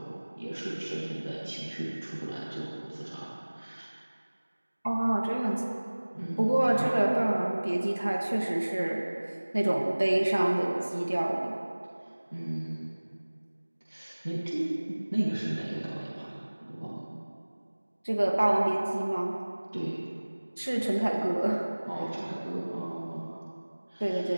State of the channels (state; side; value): inverted; both; correlation -1.00